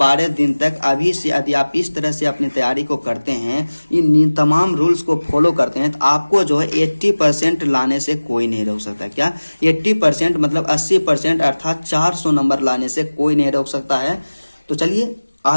दिन तक अभी से यदि आप इस तरह से अपनी तैयारी को करते हैं, इन तमाम रूल्स को फॉलो करते हैं, तो आपको जो है 80% लाने से कोई नहीं रोक सकता। क्या 80% मतलब 80%, अर्थात 400 नंबर लाने से कोई नहीं रोक सकता है। तो चलिए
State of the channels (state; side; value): inverted; both; correlation -1.00